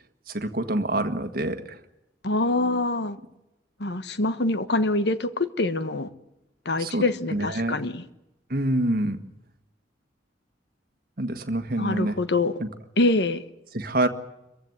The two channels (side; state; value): both; normal; correlation 0.24